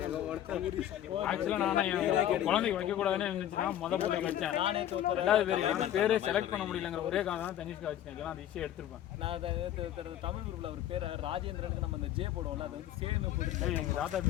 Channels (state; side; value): quieter; right; 11.7 dB